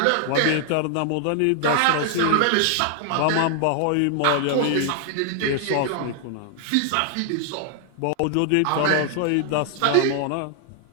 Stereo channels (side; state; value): both; different; correlation 0.00